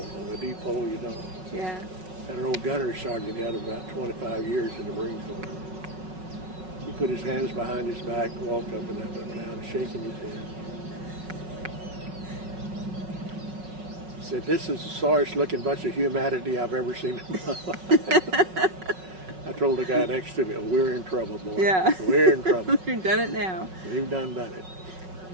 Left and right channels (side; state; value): left; late; 5.4 ms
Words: on the depot, Yeah. And an old gunnery sergeant had about 25 years in the Marine Corps. He put his hands behind his back, walked up and down, shaking his head. He said, "This is the sorriest looking bunch of humanity I've ever seen in my life." I told the guy next to me, "We're in trouble, boy. Yeah. We're in trouble. You've done it now. We've done it."